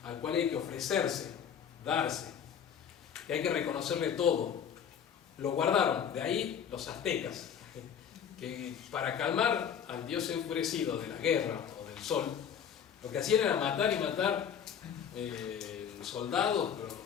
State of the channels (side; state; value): right; quieter; 8.1 dB